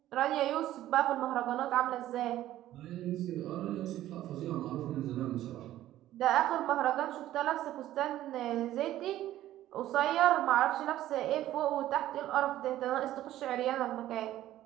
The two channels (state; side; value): quieter; left; 13.8 dB